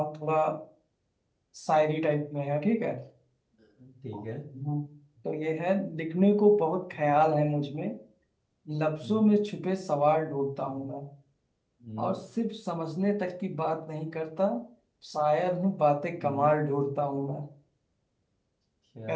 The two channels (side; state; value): both; identical; correlation 1.00